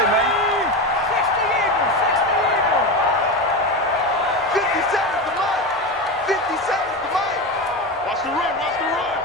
man. 50 seconds to Mike. 50 seconds to Mike. Watch the run, watch the run.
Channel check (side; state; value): both; normal; correlation 0.20